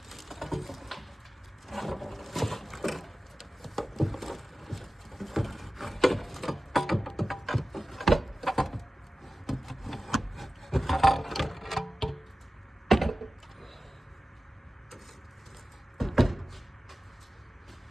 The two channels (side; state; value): both; normal; correlation 0.95